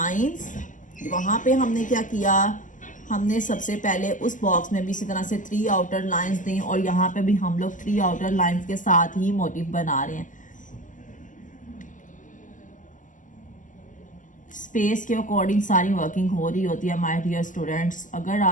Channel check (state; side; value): late; right; 0.37 ms